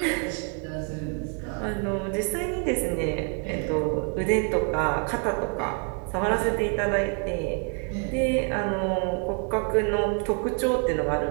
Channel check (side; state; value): left; quieter; 36.6 dB